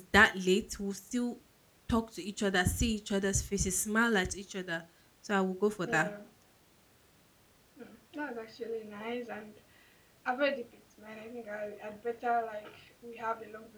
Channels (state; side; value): identical; both; correlation 1.00